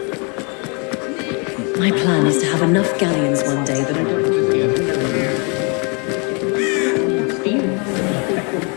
My plan is to have enough galleons one day that I don't...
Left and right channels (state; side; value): quieter; right; 33.9 dB